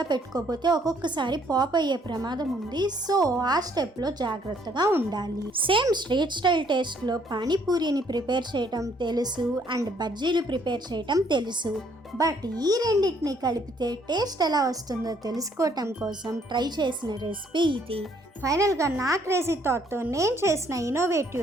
పెట్టుకోకపోతే ఒక్కొక్కసారి పాప్ అయ్యే ప్రమాదం ఉంది. సో ఆ స్టెప్లో జాగ్రత్తగా ఉండాలి. సేమ్ స్ట్రీట్ స్టైల్ టేస్ట్లో పానీపూరిని ప్రిపేర్ చేయటం తెలుసు అండ్ బజ్జీలు ప్రిపేర్ చేయటం తెలుసు. బట్ ఈ రెండింటిని కలిపితే టేస్ట్ ఎలా వస్తుందో తెలుసుకోవటం కోసం ట్రై చేసిన రెసిపీ ఇది. ఫైనల్గా నా క్రేజీ థాట్తో నేను చేసిన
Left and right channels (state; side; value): normal; both; correlation 0.65